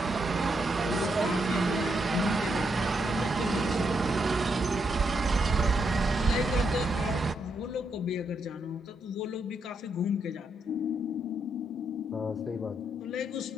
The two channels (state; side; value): normal; both; correlation 0.79